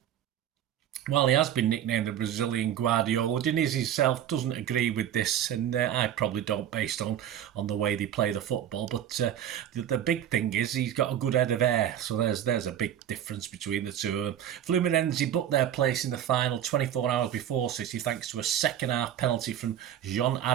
While he has been nicknamed the Brazilian Guardiola, Diniz himself doesn't agree with this, and I probably don't, based on the way they play the football. But the big thing is he's got a good head of hair, so there's a big difference between the two of them. Fluminense booked their place in the final 24 hours before City thanks to a second-half penalty from John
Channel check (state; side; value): quieter; left; 10.4 dB